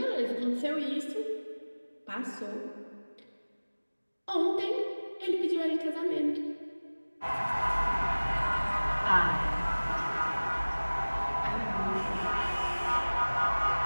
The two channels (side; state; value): both; inverted; correlation -1.00